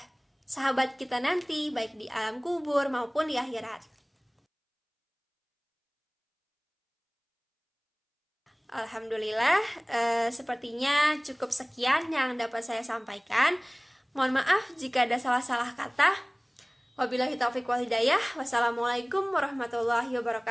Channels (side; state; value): both; identical; correlation 1.00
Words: sahabat kita nanti, baik di alam kubur maupun di akhirat. Alhamdulillah, sepertinya cukup sekian yang dapat saya sampaikan. Mohon maaf jika ada salah-salah kata. Wabillahi taufiq wal hidayah. Wassalamualaikum warahmatullahi